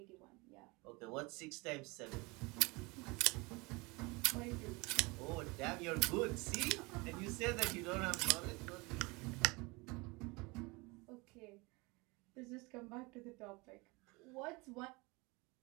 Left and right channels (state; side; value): quieter; left; 25.8 dB